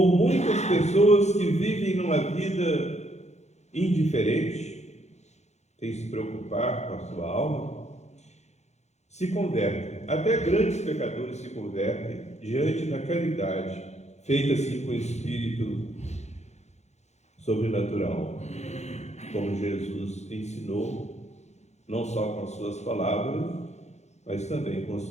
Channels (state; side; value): late; right; 0.33 ms